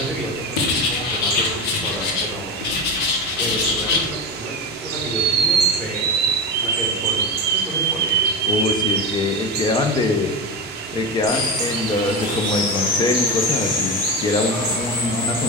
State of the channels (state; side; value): normal; both; correlation 0.20